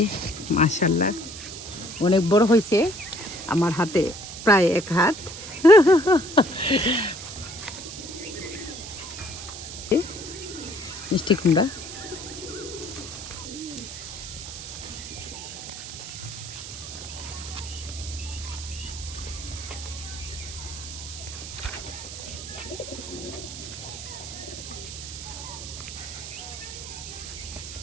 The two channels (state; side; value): noise; right; hiss, 10 dB below the sound